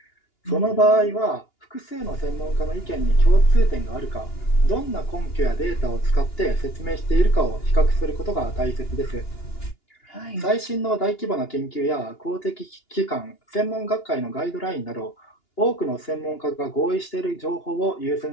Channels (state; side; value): late; right; 2.9 ms